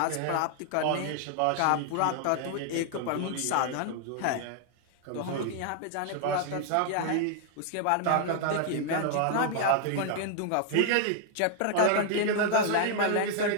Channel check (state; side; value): different; both; correlation 0.00